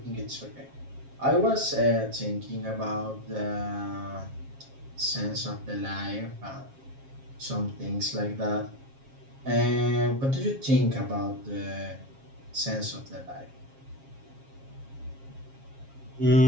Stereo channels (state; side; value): late; left; 7.4 ms